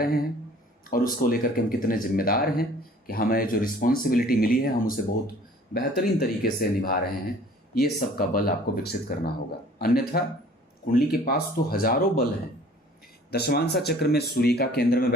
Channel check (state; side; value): normal; both; correlation 0.52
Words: हैं, और उसको लेकर के हम कितने जिम्मेदार हैं कि हमें जो रिस्पॉन्सिबिलिटी मिली है हम उसे बहुत बेहतरीन तरीके से निभा रहे हैं। ये सब का बल आपको विकसित करना होगा, अन्यथा कुंडली के पास तो हजारों बल हैं। दशमांशा चक्र में सूर्य का केंद्र में